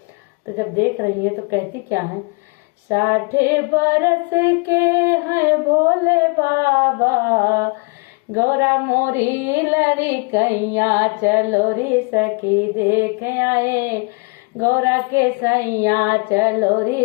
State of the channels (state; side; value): quieter; right; 32.7 dB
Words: तो जब देख रही हैं तो कहती क्या है। 60 बरस के हैं भोले बाबा, गौरा मोरी लरी कैया, चलो रे सखी देख आए गौरा के सैया, चलो